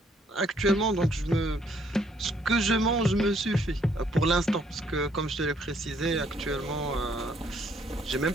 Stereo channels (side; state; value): both; normal; correlation 0.67